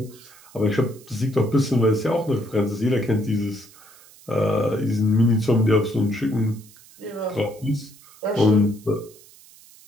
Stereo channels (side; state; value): right; noise; hiss, 24 dB below the sound